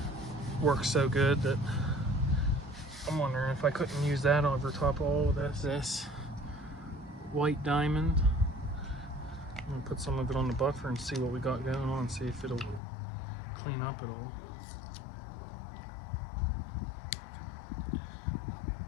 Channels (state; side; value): drops out; right; at 12.8 s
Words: works so good that I'm wondering if I couldn't use that over top of all of this white diamond. I'm gonna put some of it on the buffer and see what we got going on, see if it'll clean up at all.